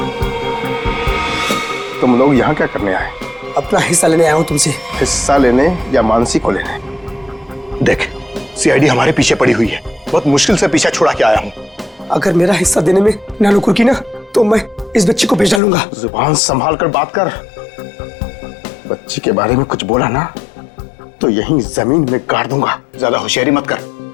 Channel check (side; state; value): right; drops out; at 15.6 s